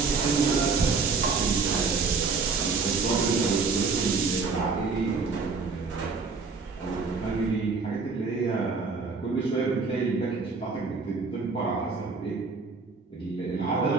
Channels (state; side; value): quieter; left; 4.6 dB